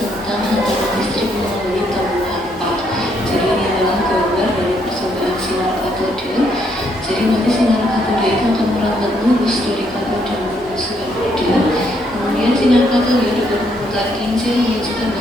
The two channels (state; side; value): normal; both; correlation 0.72